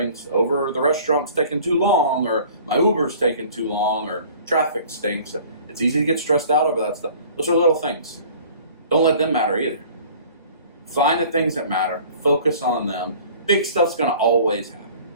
over the restaurant's taking too long, or my Uber's taking too long, or traffic stinks. It's easy to get stressed out over that stuff. Those are little things. Don't let them matter either. Find the things that matter. Focus on them. Big stuff's going to always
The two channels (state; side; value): inverted; both; correlation -0.48